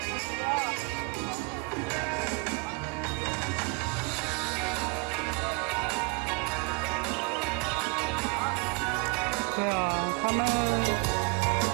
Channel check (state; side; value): quieter; left; 31.1 dB